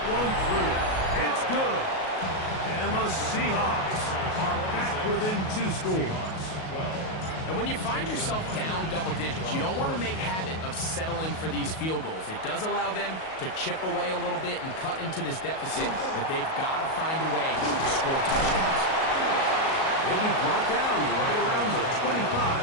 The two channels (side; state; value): right; late; 37 ms